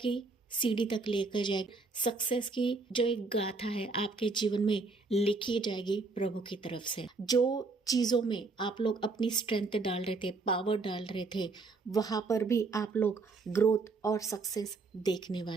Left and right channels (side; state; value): left; quieter; 3.9 dB